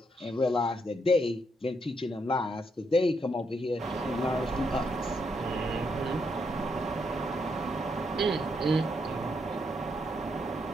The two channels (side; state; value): both; normal; correlation 0.78